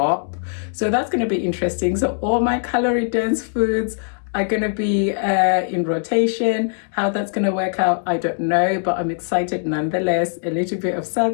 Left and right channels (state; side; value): silent; right; digital silence